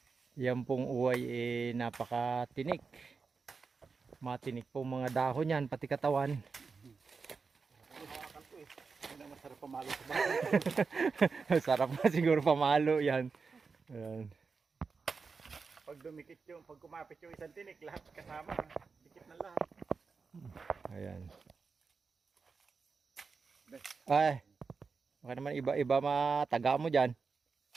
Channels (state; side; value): quieter; left; 4.9 dB